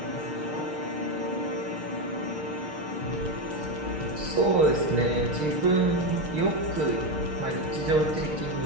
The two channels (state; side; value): late; left; 6.5 ms